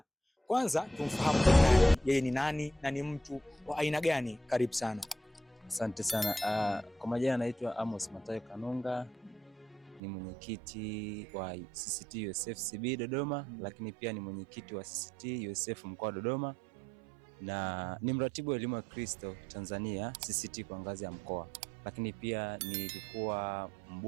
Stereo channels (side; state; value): left; drops out; at 10.0 s